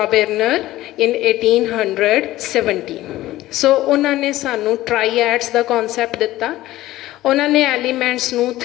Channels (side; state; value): right; quieter; 16.0 dB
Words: ਇਨ 1817। ਸੋ ਉਹਨਾਂ ਨੇ ਸਾਨੂੰ ਟਰਾਈਐਡਸ ਦਾ ਕੌਨਸੈਪਟ ਦਿੱਤਾ। ਉਹਨਾਂ ਨੇ ਐਲੀਮੈਂਟਸ ਨੂੰ